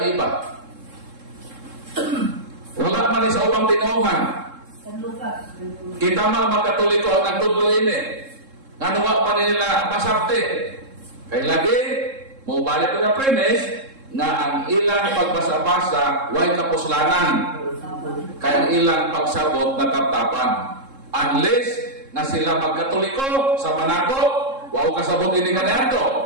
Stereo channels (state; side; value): late; left; 3.7 ms